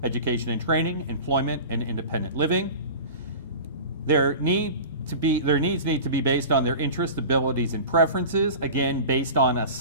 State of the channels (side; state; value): both; inverted; correlation -0.34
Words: education and training, employment, and independent living. Their needs need to be based on their interests, abilities, and preferences, again, based on